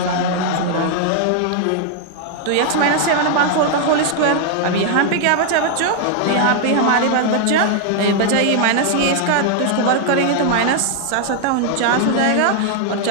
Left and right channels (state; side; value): different; both; correlation 0.00